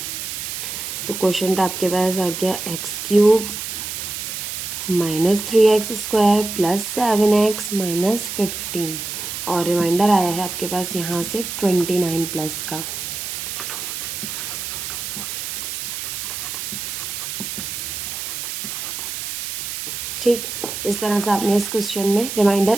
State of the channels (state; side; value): noise; right; hiss, 5 dB below the sound